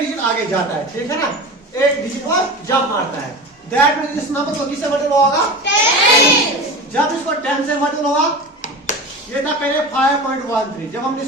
आगे जाता है, ठीक है ना, एक डिजिट वो जंप मारता है। दैट मींस इस नंबर को किससे मल्टीप्लाई होगा 10। जब इसको 10 से मल्टीप्लाई होगा, ये था पहले 5.13, जब हमने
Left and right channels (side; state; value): both; normal; correlation 0.30